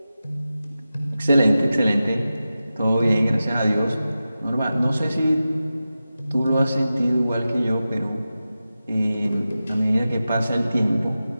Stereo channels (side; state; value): both; inverted; correlation -0.93